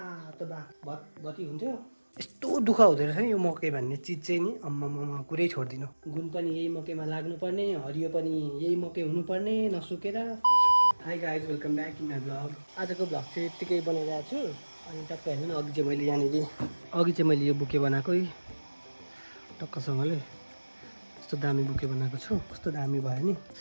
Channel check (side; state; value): both; inverted; correlation -1.00